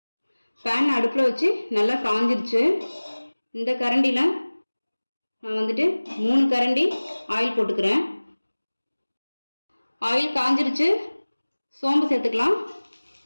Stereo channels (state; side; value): inverted; both; correlation -1.00